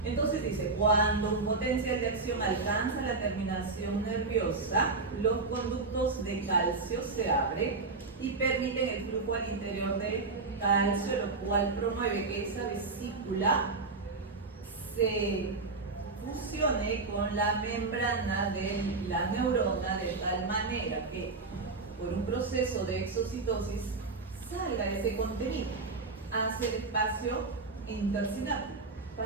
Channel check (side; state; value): left; quieter; 3.8 dB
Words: Entonces dice, cuando un potencial de acción alcanza la terminación nerviosa, los conductos de calcio se abren y permiten el flujo al interior de calcio, lo cual promueve que esa vesícula se fusione con la membrana de la neurona de tal manera que por un proceso de exocitosis salga ese contenido hacia el espacio intersináptico